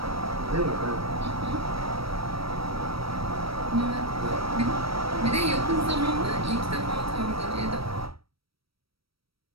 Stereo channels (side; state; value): left; late; 0.75 ms